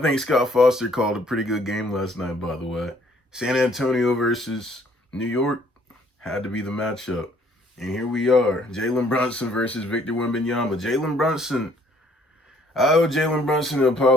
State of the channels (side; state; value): both; normal; correlation 0.62